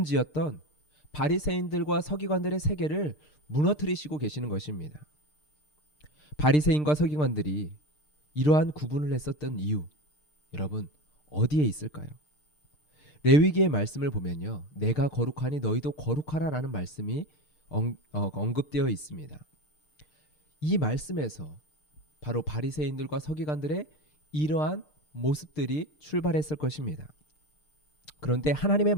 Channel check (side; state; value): right; late; 6.6 ms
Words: 바리새인들과 서기관들의 세계를 무너뜨리시고 계시는 것입니다. 바리새인과 서기관들이 이러한 구분을 했었던 이유, 여러분 어디에 있을까요? 레위기의 말씀을 보면요, 내가 거룩하니 너희도 거룩하라라는 말씀이 언급되어 있습니다. 이 말씀에서 바로 바리새인들과 서기관들의 이러한 모습들이 출발했을 것입니다. 그런데 하나님의